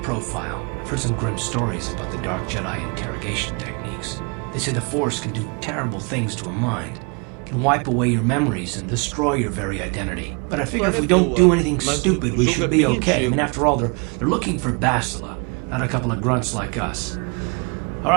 I've heard some grim stories about the Dark Jedi interrogation techniques. They say the Force can do terrible things to a mind. It can wipe away your memories and destroy your very identity. But I figure if we don't do anything stupid, we should be okay. I mean, after all, they're looking for Bastila. not a couple of grunts like us. All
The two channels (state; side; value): quieter; left; 33.7 dB